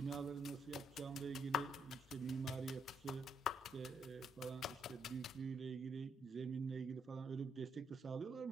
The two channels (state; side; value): normal; both; correlation 0.75